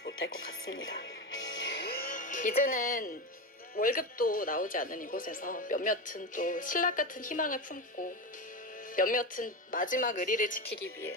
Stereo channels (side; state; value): both; normal; correlation 0.19